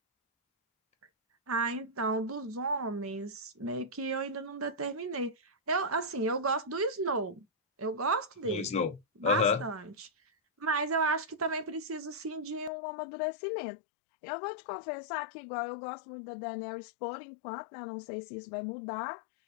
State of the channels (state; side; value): drops out; right; at 12.7 s